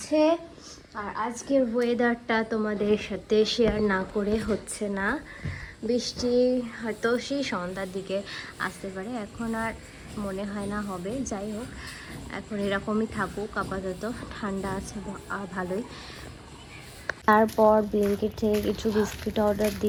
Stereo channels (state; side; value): identical; both; correlation 1.00